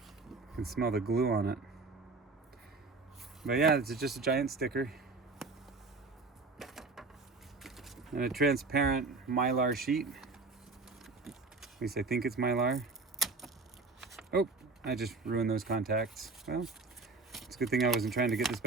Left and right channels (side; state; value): left; quieter; 3.9 dB